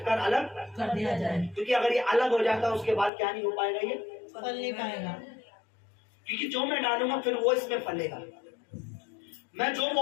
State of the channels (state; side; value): drops out; right; at 3.1 s